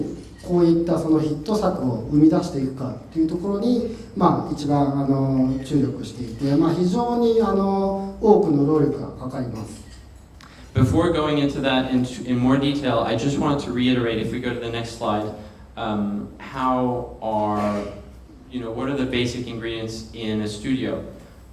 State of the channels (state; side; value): identical; both; correlation 1.00